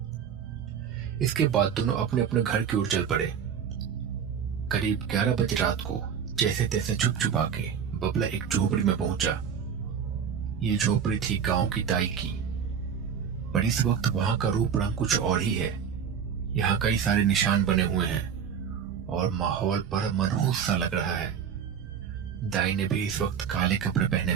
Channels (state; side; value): quieter; left; 7.6 dB